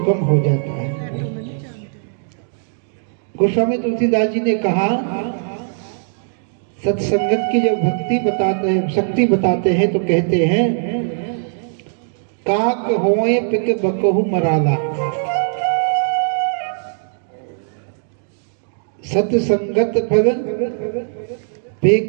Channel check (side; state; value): left; silent; digital silence